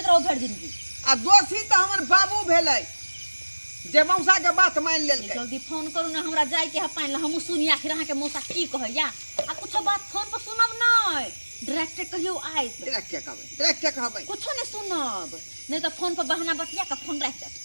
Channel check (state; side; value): inverted; both; correlation -1.00